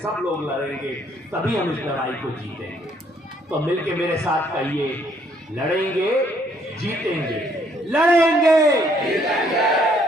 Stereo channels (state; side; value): normal; both; correlation 0.66